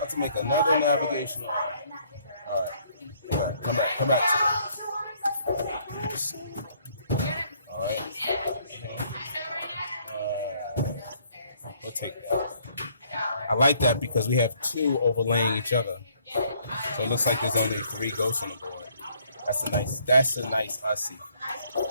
to make another navigational error. All right. Come back to it. All right. We'll take that. I like that because we have two overlaying each other. So it looks like there's only 3 ghosts on the board. That's a nice Ussy.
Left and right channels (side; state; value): both; inverted; correlation -0.65